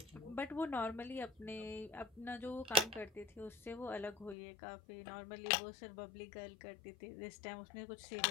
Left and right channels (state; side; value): drops out; right; at 4.4 s